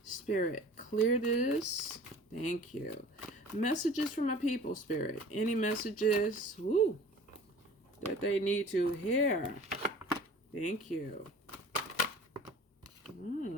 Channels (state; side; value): normal; both; correlation 0.44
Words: Spirit, clear this. Thank you. Messages from my people, Spirit. Any messages that they need to hear? Thank you.